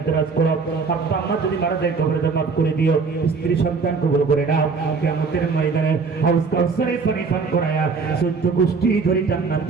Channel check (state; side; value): quieter; left; 4.8 dB